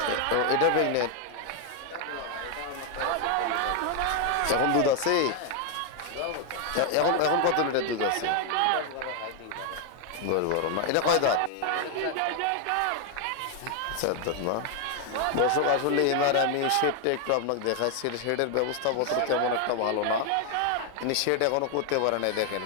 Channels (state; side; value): different; both; correlation 0.00